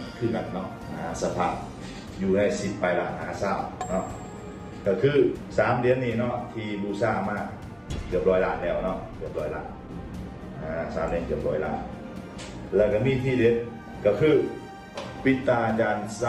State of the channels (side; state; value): both; identical; correlation 1.00